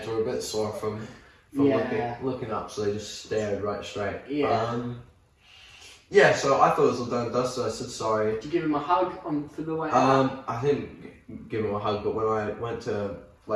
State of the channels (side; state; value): both; identical; correlation 1.00